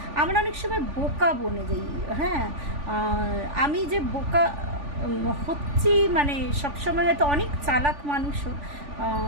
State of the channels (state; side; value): late; left; 3.5 ms